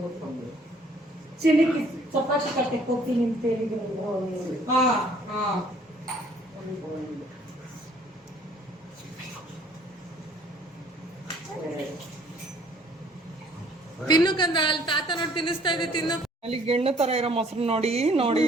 ಚಿನಿಕಿ ಚಪಾತಿ ಕಟ್ಟಕ್ಕೆ ಹೋಗ್ತೀನಿ ಅಂತ ಹೇಳಿದ್ರು. ತಿನ್ನು ಕಂದ ಅಲ್ಲಿ ತಾತ ನೋಡಿ ತಿನ್ನಿಸ್ತಾ ಇದೆ ತಿನ್ನು. ಅಲ್ಲಿ ಗೆಣ್ಣು ತರ ಇರೋ ಮೊಸರು ನೋಡಿ ನೋಡಿ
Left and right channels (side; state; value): both; normal; correlation 0.58